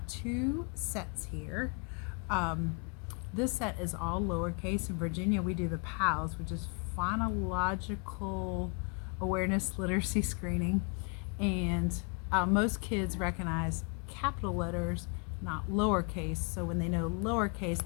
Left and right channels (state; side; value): quieter; right; 36.3 dB